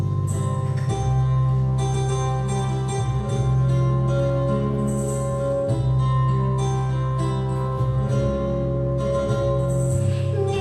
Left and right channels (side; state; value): both; identical; correlation 1.00